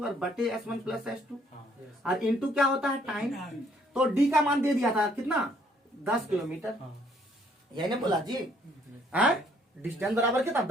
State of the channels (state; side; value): normal; both; correlation 0.65